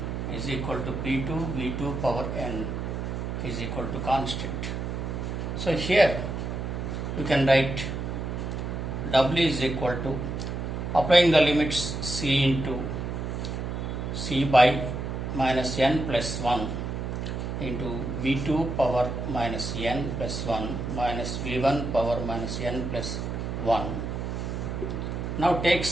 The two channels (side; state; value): right; noise; hum, 4 dB below the sound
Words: is equal to P2 V2 power n is equal to constant. So here you can write W is equal to, applying the limits C into C by minus n plus 1 into V2 power minus n plus 1 minus V1 power minus n plus 1. Now take